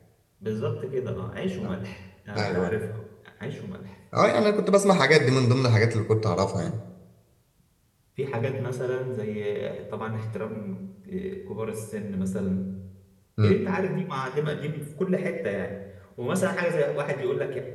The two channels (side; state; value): both; identical; correlation 1.00